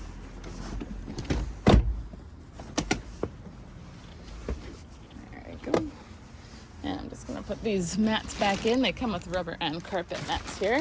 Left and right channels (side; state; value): both; identical; correlation 1.00